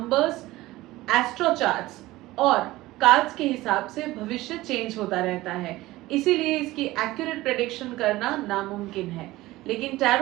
एस्ट्रो चार्ट्स और कार्ड्स के हिसाब से भविष्य चेंज होता रहता है, इसीलिए इसकी एक्यूरेट प्रेडिक्शन करना नामुमकिन है। लेकिन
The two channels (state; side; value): quieter; left; 18.0 dB